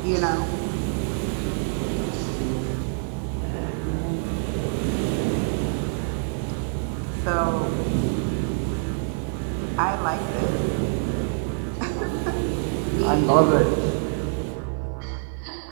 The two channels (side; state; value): left; silent; 56 dB below the other